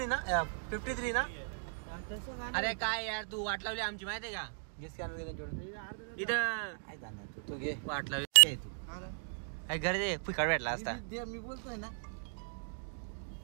ना, 53 ना? अरे काय यार, तू वाट लावली आमची माहिती आहे का? इथं वाट लावली काय घर दे फुकट भेटला असता. मी बोलतोय ना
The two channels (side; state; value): left; silent; digital silence